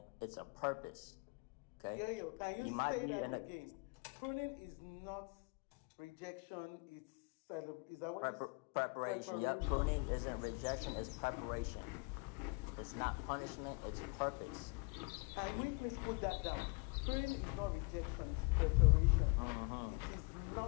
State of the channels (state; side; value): quieter; right; 32.2 dB